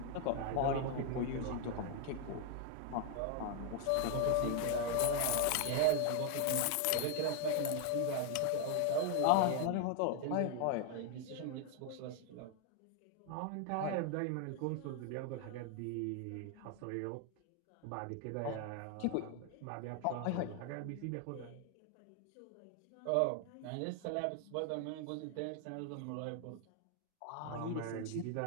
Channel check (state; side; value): different; both; correlation 0.00